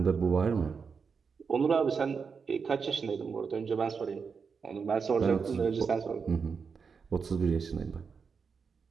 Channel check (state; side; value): quieter; left; 5.7 dB